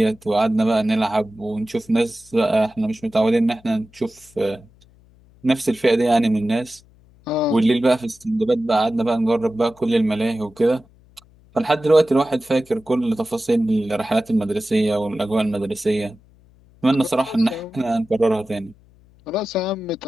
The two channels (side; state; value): left; noise; hum, 29 dB below the sound